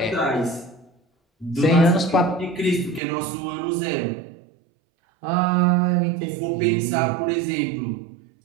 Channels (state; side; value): drops out; left; at 3.0 s